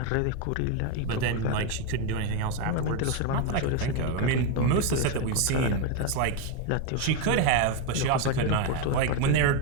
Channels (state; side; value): different; both; correlation 0.02